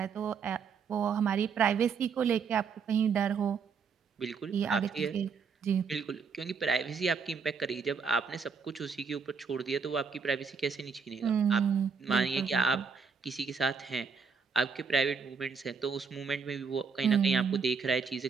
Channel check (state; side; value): quieter; left; 5.7 dB